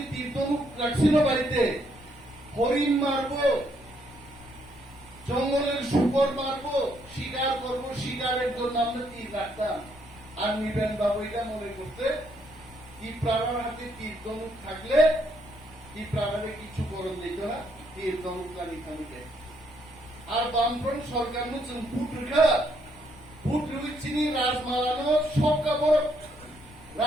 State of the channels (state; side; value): noise; left; rumble, 21 dB below the sound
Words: তীর ধনুক রাখছিল বাড়িতে হরিণ মারবো জঙ্গলের শুকর মারবো শিকার করবো শিকারের জন্য আমরা তীর রাখতাম আর নিবেন বাবু এটা মনে করতে ত্রিপুরার হাতে তীর ধনুক থাকলে ত্রিপুরারে কিছু করণ দিত না তীর ধনুক কানিকে আর বামফ্রন্ট সরকার নতুন ভোট চিনি রাজমালানো সব কাপড়